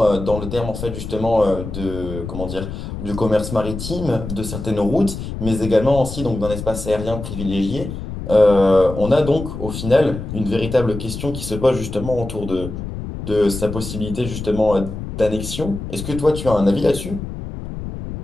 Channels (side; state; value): left; noise; rumble, 8 dB below the sound